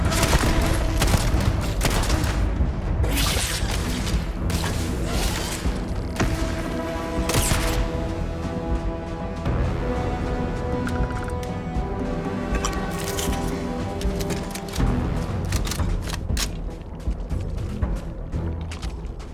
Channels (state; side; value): identical; both; correlation 1.00